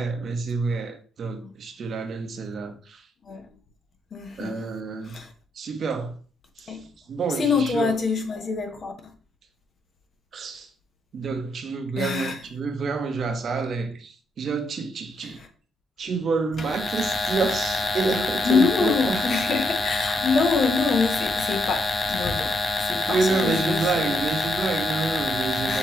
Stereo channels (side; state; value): both; normal; correlation 0.77